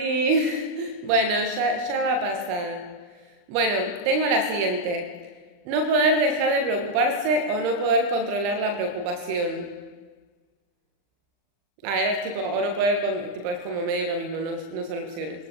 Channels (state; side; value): late; left; 40 ms